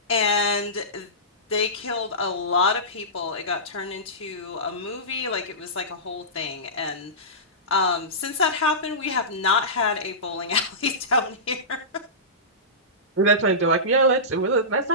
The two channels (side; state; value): both; normal; correlation -0.19